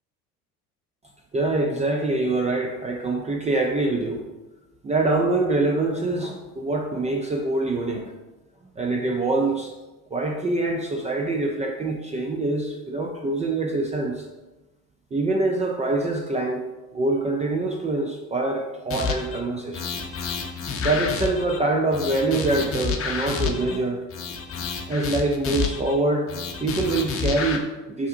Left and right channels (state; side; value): normal; both; correlation 0.38